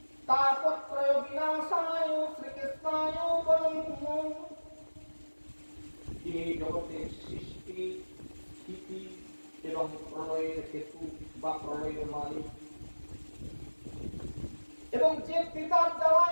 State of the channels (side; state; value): both; inverted; correlation -1.00